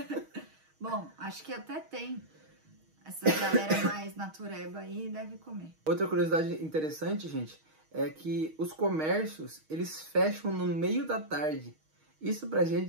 Bom, acho que até tem. Essa galera mais natureba aí deve comer. Outra curiosidade interessante, gente, é que os comércios, eles fecham no meio da tarde. Isso pra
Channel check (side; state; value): left; late; 6.4 ms